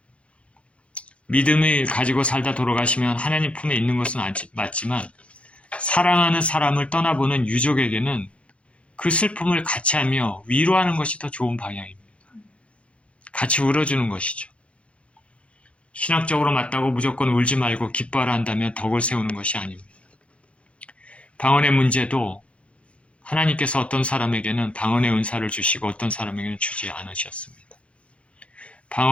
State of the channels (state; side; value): late; right; 0.061 ms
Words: 믿음을 가지고 살다 돌아가시면 하나님 품에 있는 것은 맞지만 사랑하는 사람을 떠나보는 유족에게는 그 슬픔을 같이 하며 위로하는 것이 더 좋은 방향입니다. 같이 울어주는 것이죠. 신학적으로 맞다고 무조건 울지 말고 기뻐하라 한다면 덕을 세우는 것이 아닙니다. 방언의 문제도 하나님께서 어떤 사람에게는 방언의 은사를 주시고 어떤 사람에게는 주지 않으셨습니다.